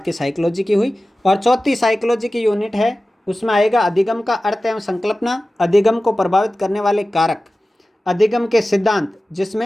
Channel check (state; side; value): normal; both; correlation 0.96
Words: साइकोलॉजी की हुई। और चौथी साइकोलॉजी की यूनिट है, उसमें आएगा अधिगम का अर्थ एवं संकल्पना, अधिगम को प्रभावित करने वाले कारक, अधिगम के सिद्धांत,